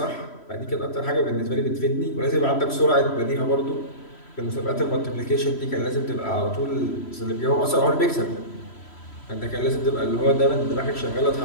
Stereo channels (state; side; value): late; right; 3.1 ms